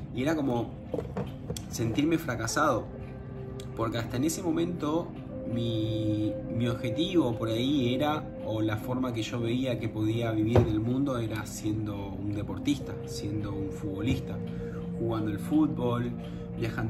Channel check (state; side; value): identical; both; correlation 1.00